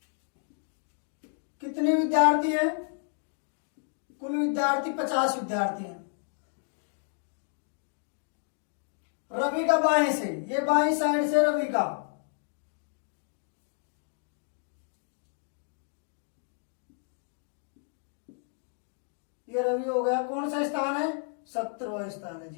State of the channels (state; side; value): silent; right; 56 dB below the other